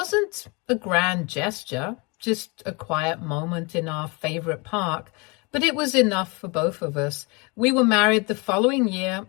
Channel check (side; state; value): right; quieter; 29.2 dB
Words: a grand gesture, just a quiet moment in our favorite park, but it was enough for both of us. We were married the following year,